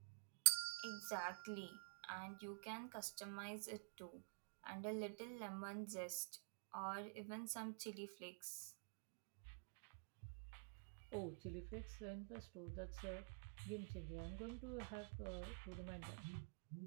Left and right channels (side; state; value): left; quieter; 35.8 dB